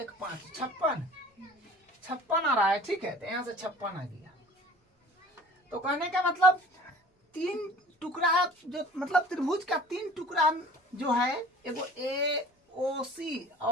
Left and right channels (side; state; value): both; normal; correlation 0.46